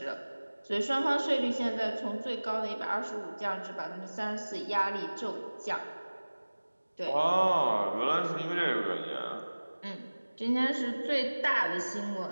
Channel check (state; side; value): inverted; both; correlation -1.00